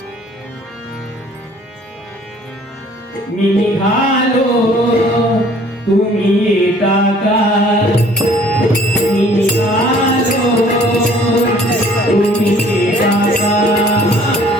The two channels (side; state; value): both; normal; correlation 0.55